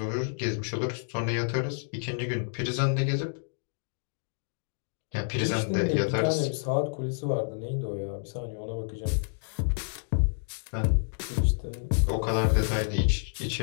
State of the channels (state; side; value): silent; right; digital silence